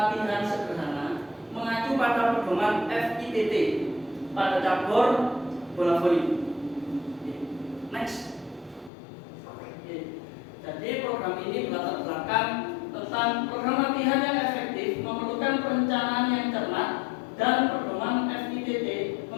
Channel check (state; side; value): drops out; right; at 8.9 s